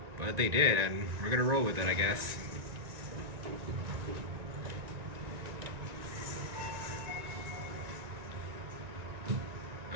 but they did, and we're gonna roll with it, I guess.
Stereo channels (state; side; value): late; left; 1.9 ms